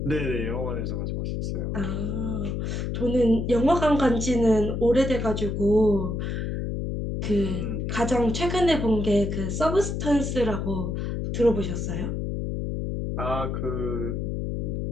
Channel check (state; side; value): noise; left; hum, 2 dB below the sound